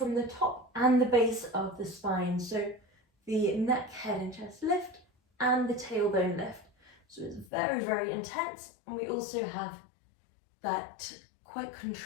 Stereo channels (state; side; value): drops out; right; at 7.5 s